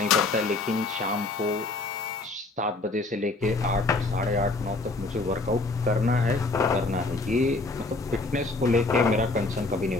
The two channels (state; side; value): quieter; right; 3.3 dB